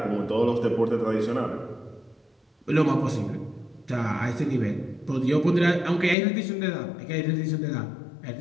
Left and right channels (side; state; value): right; drops out; at 6.2 s